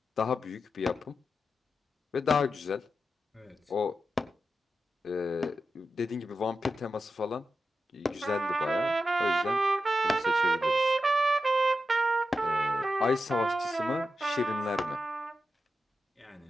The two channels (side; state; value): both; normal; correlation 0.89